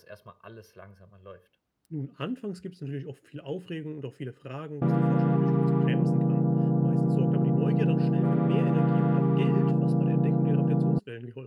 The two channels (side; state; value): both; identical; correlation 1.00